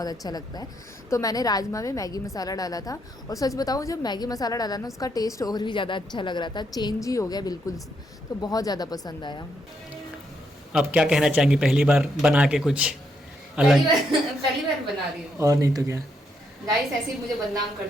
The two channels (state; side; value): normal; both; correlation 0.77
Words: अच्छा लगता है। तो मैंने राजमा में मैगी मसाला डाला था, और सच बताऊँ जब मैगी मसाला डाला ना उसका टेस्ट और भी ज़्यादा अच्छा लग रहा था, चेंज ही हो गया बिल्कुल। तो बहुत ज़्यादा पसंद आया। अब क्या कहना चाहेंगी, पहली बार बना के कुछ अलग? पहली बार बना रही हूँ। और नहीं तो क्या गाइस, ऐसे ही मुझे बदनाम